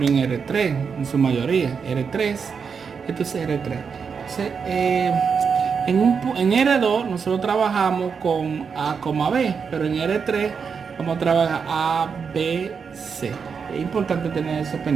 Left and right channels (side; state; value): left; quieter; 6.0 dB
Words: en R3, en su mayoría. R3, esto es R3. Entonces, en R2 nosotros trabajamos con A, B, pero en R3 vamos a trabajar A, B, C. Es importante tener eso